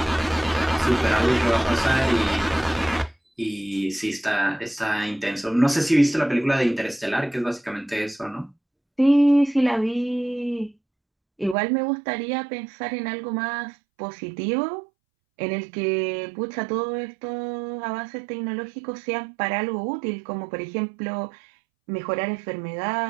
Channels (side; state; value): left; drops out; at 11.6 s